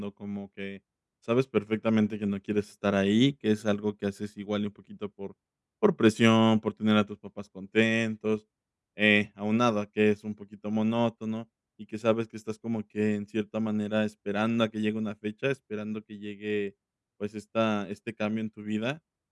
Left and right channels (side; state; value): both; identical; correlation 1.00